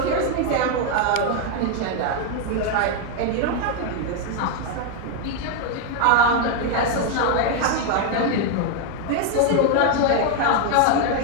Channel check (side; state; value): both; different; correlation 0.01